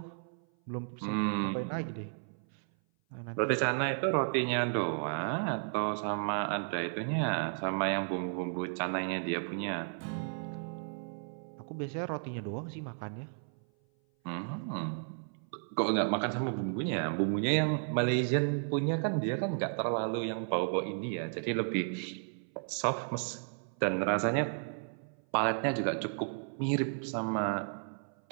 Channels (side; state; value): left; silent; 55 dB below the other